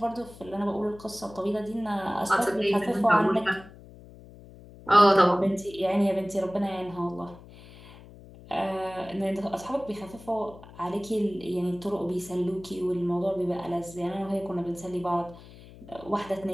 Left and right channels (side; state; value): left; noise; hum, 19 dB below the sound